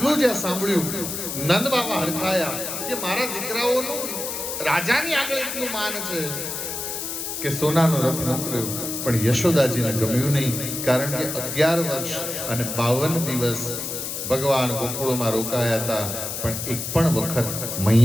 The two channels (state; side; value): noise; left; hiss, 5 dB below the sound